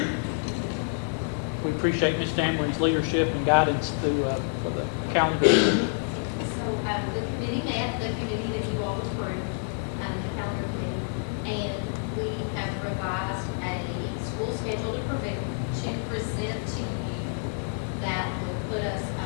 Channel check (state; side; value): silent; right; 59 dB below the other